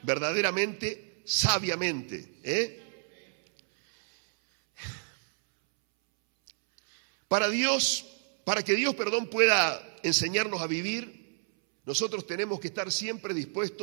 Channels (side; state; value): left; silent; 58 dB below the other